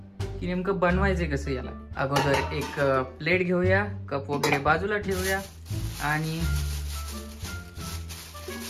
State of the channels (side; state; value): both; identical; correlation 1.00